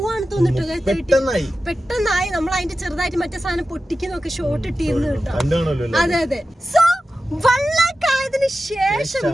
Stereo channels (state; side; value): normal; both; correlation 0.93